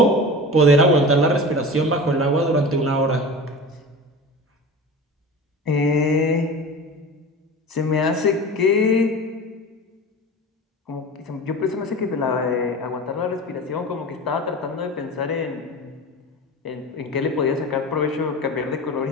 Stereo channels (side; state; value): both; normal; correlation 0.33